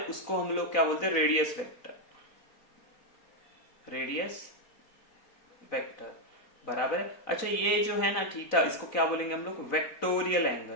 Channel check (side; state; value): right; late; 4.0 ms